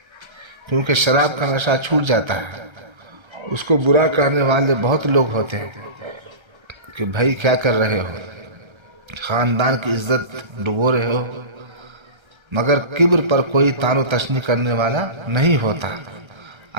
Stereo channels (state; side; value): late; left; 1.3 ms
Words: کیونکہ شراب کا نشہ چھوٹ جاتا ہے۔ اس کو برا کہنے والے بہت لوگ ہوتے ہیں کہ بھائی کیا کر رہے ہو، خاندان کی عزت ڈبو رہے ہو، مگر کبر پر کوئی تان و تشنی کرنے والا نہیں ہوتا۔